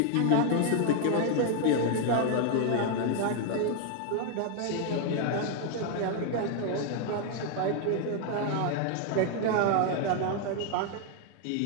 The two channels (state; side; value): different; both; correlation 0.00